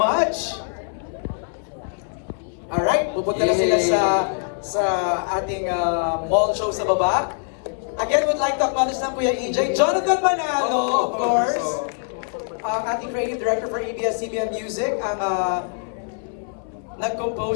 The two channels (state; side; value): silent; right; 63 dB below the other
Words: Alright, pupunta na sila sa ating mall show sa baba. Again, would like to acknowledge na Kuya EJ, Jonathan Manalo, of course. Ang ating creative director for ABS-CBN Music, ang